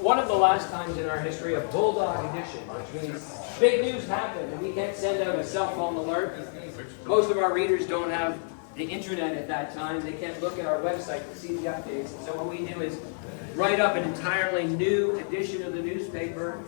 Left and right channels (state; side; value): silent; right; digital silence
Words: of the last times in our history, a bulldog edition, which means big news happened and we can't send out a cell phone alert. Most of our readers don't have the internet at that time. They can't look at our website to see the updates. So what we do is write up an entirely new edition of the newspaper,